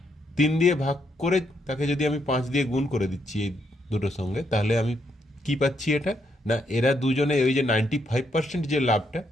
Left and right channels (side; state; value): both; normal; correlation 0.76